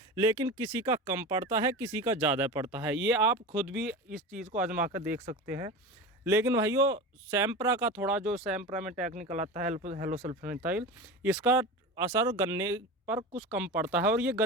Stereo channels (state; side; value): normal; both; correlation 0.29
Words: लेकिन किसी का कम पड़ता है, किसी का ज़्यादा पड़ता है। ये आप खुद भी इस चीज़ को आजमा कर देख सकते हैं। लेकिन भाइयों सैम्प्रा का थोड़ा, जो सैम्प्रा में टेक्निकल आता है हेलो सल्फोनाल, इसका असर गन्ने पर कुछ कम पड़ता है। और ये